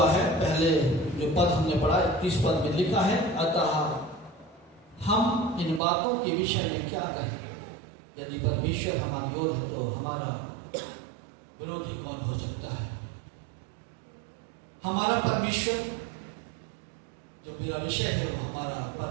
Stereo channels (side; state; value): left; drops out; at 5.8 s